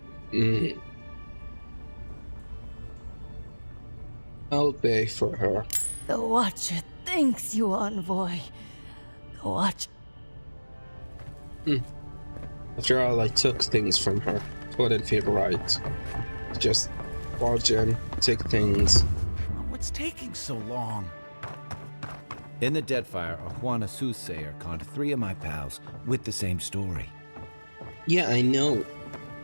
I'll pay for her. The Watcher thanks you, envoy. The Watcher. After all, I took things from her. It wouldn't feel right. Just barge in, take things. What's taking so long? In the Deadfire, a Juana soothsayer conned 3 of my pals with the same story. Yeah, I know.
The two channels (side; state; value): both; inverted; correlation -1.00